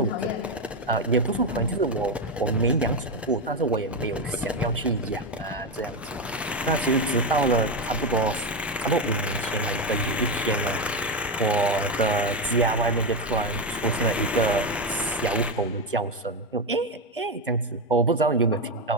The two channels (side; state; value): both; normal; correlation 0.11